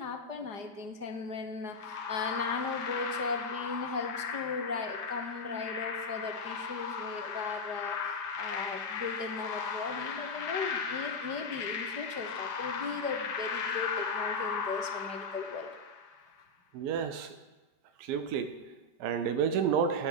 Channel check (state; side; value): late; left; 4.8 ms